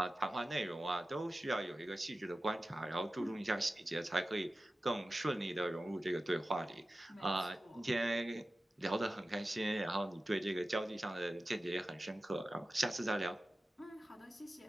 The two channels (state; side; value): normal; both; correlation 0.95